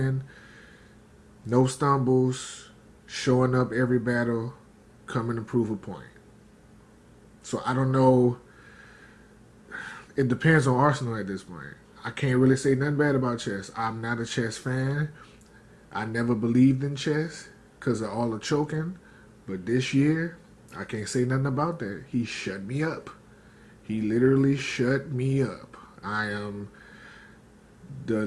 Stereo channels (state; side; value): identical; both; correlation 1.00